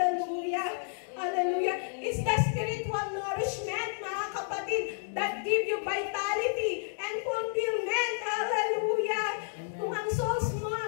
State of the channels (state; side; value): silent; right; digital silence